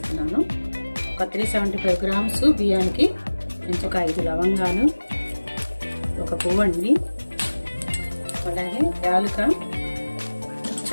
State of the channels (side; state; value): both; inverted; correlation -1.00